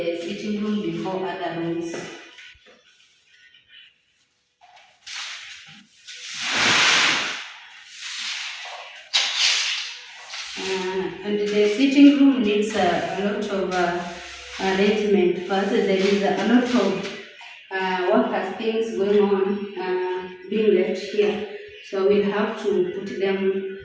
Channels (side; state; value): both; identical; correlation 1.00